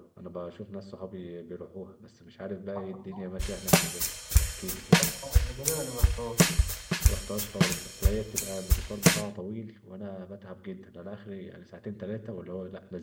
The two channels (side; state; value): both; identical; correlation 1.00